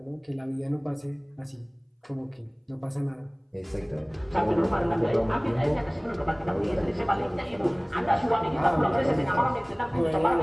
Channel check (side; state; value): both; identical; correlation 1.00